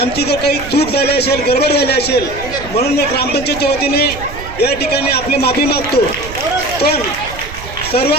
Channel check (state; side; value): noise; right; rumble, 13 dB below the sound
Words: आमची जर काही चूक झाली असेल, गडबड झाली असेल म्हणून मी ग्रामपंचायतच्या वतीने या ठिकाणी आपली माफी मागतो. पण